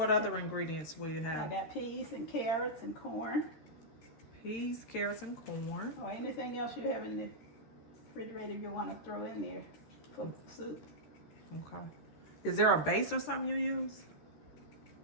other ingredients will you I have? got peas and carrots and corn, Peas, carrots, and corn. or anything else you have in the refrigerator you want to throw in there for soup. Okay. Is there a base or something you use?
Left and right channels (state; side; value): late; right; 13 ms